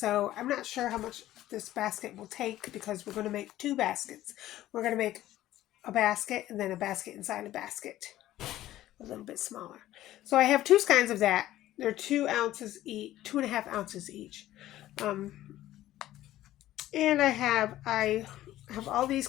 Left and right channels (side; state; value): right; quieter; 14.3 dB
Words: I'm not sure how much this basket will take because we're going to make 2 baskets. We're going to make a basket and then a basket inside a basket, a little bit smaller. So I have 2 kinds of that. They're 2 ounces each, 2.5 ounces each. And I have all these